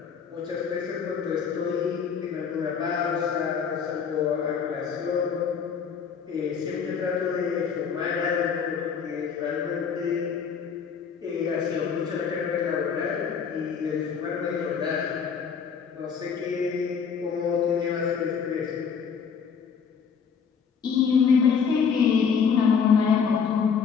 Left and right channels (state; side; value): quieter; right; 6.5 dB